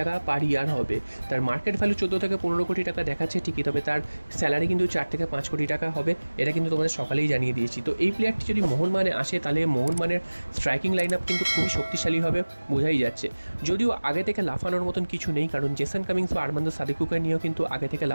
পার ইয়ার হবে। তার মার্কেট ভ্যালু 14 থেকে 15 কোটি টাকা দেখাচ্ছে ঠিকই, তবে তার স্যালারি কিন্তু 4 থেকে 5 কোটি টাকা হবে। এটা কিন্তু তোমাদের সকালেই জানিয়ে দিয়েছি। তো এই প্লেয়ারটি যদি মোহনবাগানে আসে, তাহলে মোহনবাগানের স্ট্রাইকিং লাইন আপ কিন্তু খুবই শক্তিশালী হবে, বোঝাই যাচ্ছে। যদিও আগে থেকে লাফানোর মতন কিছু নেই, কারণ জেসন কামিংস বা আরমান্দো সাদিকুকে নিয়েও কিন্তু আগে থেকে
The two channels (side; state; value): both; inverted; correlation -1.00